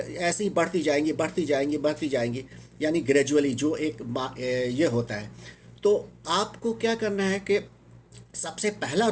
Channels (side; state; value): both; identical; correlation 1.00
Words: ऐसे ही बढ़ती जाएंगी, यानी ग्रेजुअली जो ये होता है। तो आपको क्या करना है कि सबसे पहला